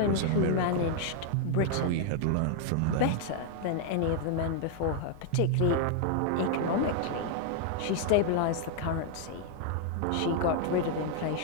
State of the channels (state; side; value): different; both; correlation 0.00